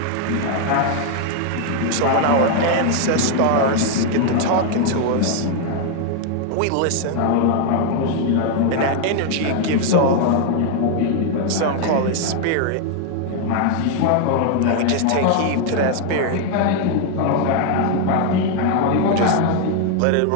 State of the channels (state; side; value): different; both; correlation 0.00